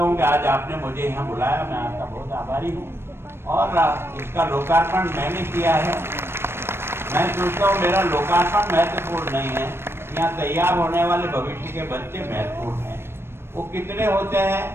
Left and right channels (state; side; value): late; left; 0.12 ms